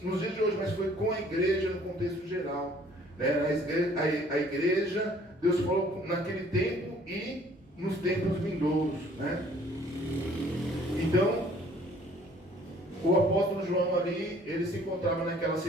nos dias de hoje, mas foi com a igreja no contexto geral, né? A igreja, Deus falou naquele tempo e nos tempos vindouros, né? Então, o apóstolo João ali, ele se encontrava naquela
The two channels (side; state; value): both; normal; correlation 0.57